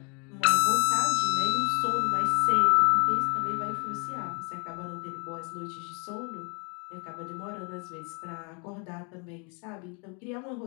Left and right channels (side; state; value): right; quieter; 35.6 dB